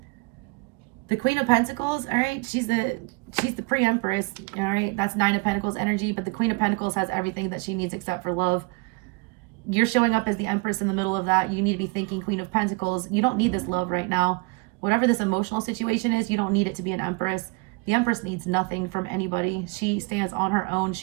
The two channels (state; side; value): quieter; left; 28.0 dB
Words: The Queen of Pentacles, all right, she's the pre-empress, all right? That's Nine of Pentacles energy, but the Queen of Pentacles has everything that she needs except for love. You're showing up as the empress in the middle of that. You need to be thinking Queen of Pentacles. You don't need this love right now. Whatever this emotional situation is, you don't need it to be an empress. The empress needs nothing from anybody. She stands on her own.